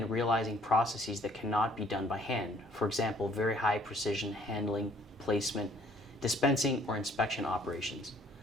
realizing processes that cannot be done by hand. For example, very high precision handling, placement, dispensing, or inspection operations.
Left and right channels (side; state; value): both; normal; correlation 0.59